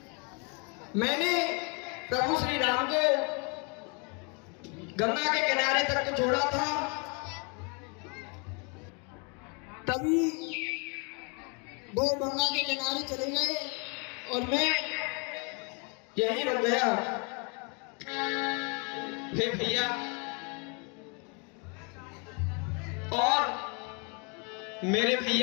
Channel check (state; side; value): quieter; right; 34.2 dB